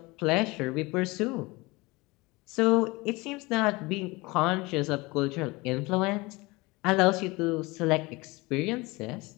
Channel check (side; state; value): right; quieter; 23.4 dB